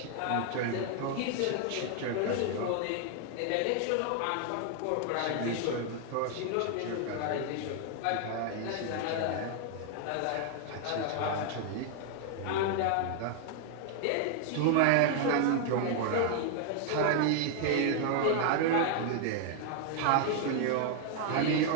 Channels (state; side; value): different; both; correlation 0.00